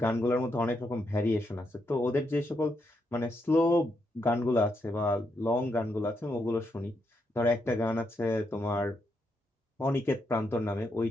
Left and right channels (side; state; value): both; normal; correlation 0.80